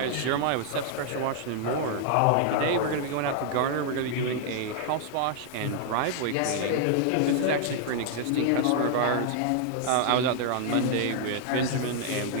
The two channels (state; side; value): different; both; correlation 0.00